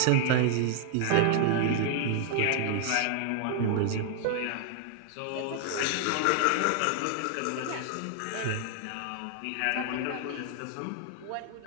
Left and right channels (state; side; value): different; both; correlation 0.00